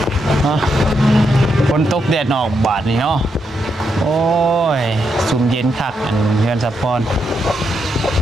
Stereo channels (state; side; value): normal; both; correlation 0.81